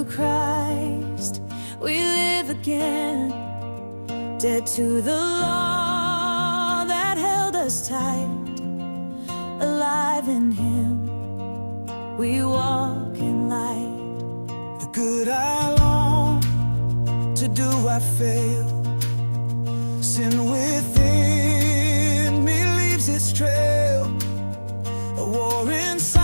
Christ we live again. Dead to the law that held us tight, alive in Him we walk in light. The good I long to do I fail. Sin within me leaves its trail, a war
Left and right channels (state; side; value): inverted; both; correlation -1.00